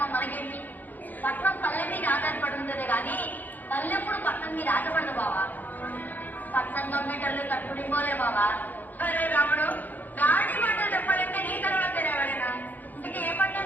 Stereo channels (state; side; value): late; right; 0.084 ms